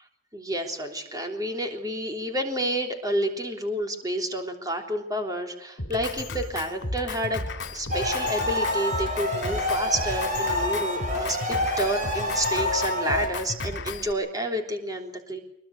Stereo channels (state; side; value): normal; both; correlation 0.05